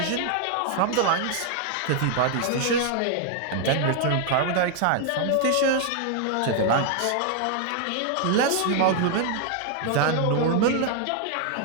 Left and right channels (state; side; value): different; both; correlation 0.00